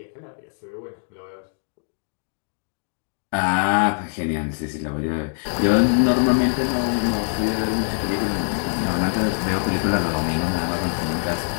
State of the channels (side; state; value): right; silent; 63 dB below the other